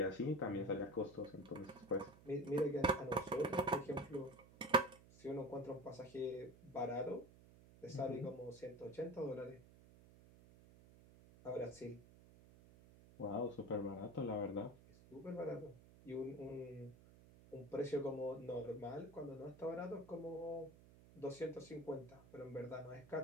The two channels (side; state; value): right; noise; hum, 21 dB below the sound